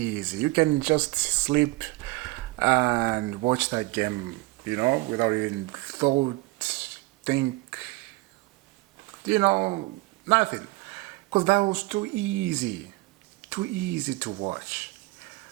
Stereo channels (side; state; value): left; quieter; 21.3 dB